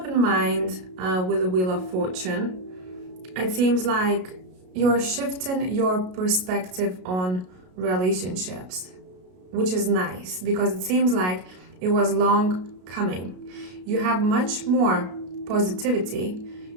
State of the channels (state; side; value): late; left; 33 ms